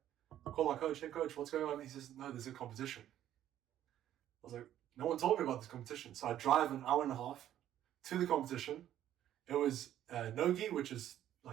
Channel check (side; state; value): left; quieter; 11.7 dB